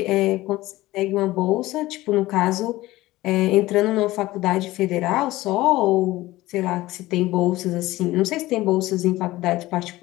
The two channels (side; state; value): right; quieter; 17.7 dB